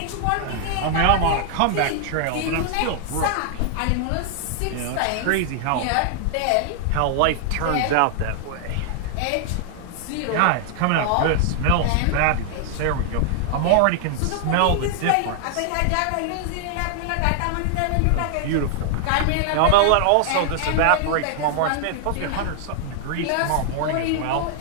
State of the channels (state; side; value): different; both; correlation 0.00